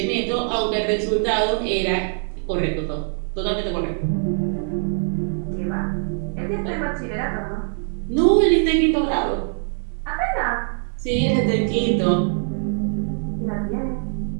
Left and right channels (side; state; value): left; silent; 64 dB below the other